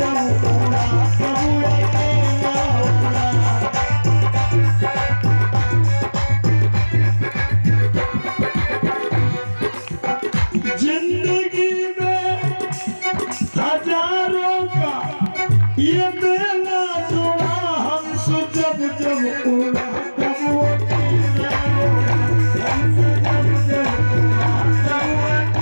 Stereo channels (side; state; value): both; inverted; correlation -1.00